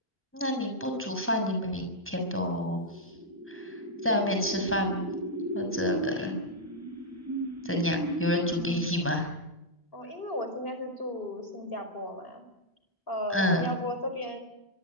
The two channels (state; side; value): normal; both; correlation -0.05